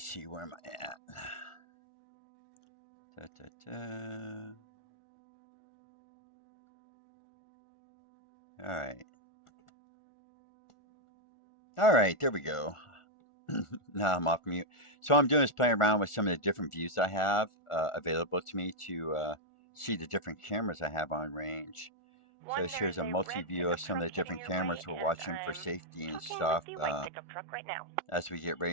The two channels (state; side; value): late; right; 1.4 ms